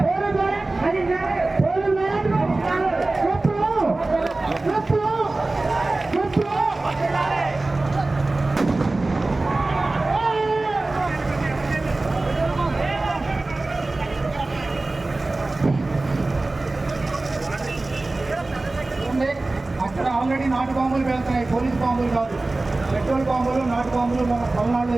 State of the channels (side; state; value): left; quieter; 3.1 dB